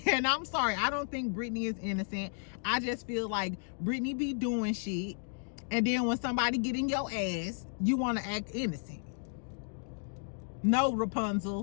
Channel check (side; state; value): right; silent; digital silence